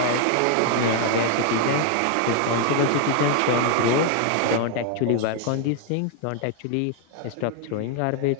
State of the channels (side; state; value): both; different; correlation 0.00